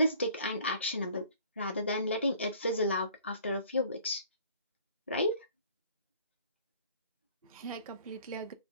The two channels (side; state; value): both; inverted; correlation -0.53